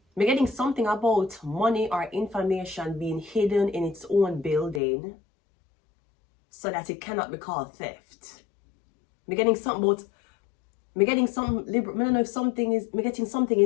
I'm getting something about money or information being hidden in its own building so that it cannot be called theft. I'm getting something about, I'm getting some, I don't know if something is, I'm getting something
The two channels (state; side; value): drops out; right; at 4.8 s